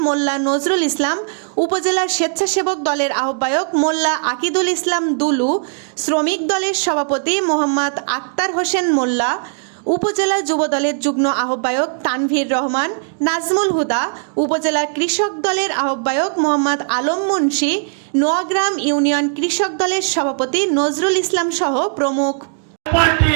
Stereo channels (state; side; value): silent; left; digital silence